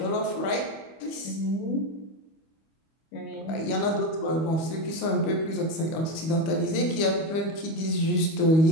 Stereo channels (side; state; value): right; late; 25 ms